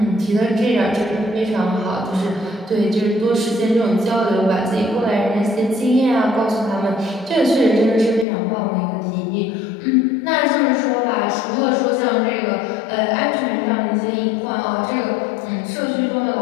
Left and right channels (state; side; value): drops out; right; at 8.2 s